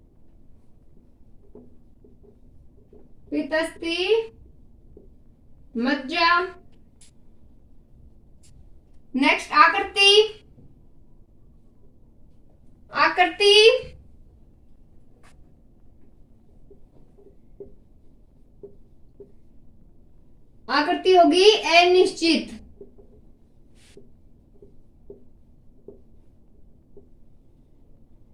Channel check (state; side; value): identical; both; correlation 1.00